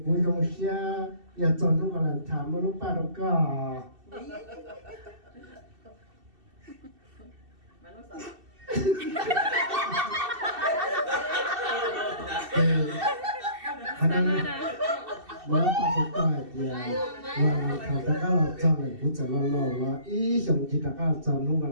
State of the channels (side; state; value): left; late; 2.7 ms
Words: cuối trong xe, giờ chọn lúc là thảm một lúc ba đâu cả. Mới bắt đầu coi thì thằng ta cái là chọn này cũng chọn lo là ý xong chỉ ta cái chọn lúc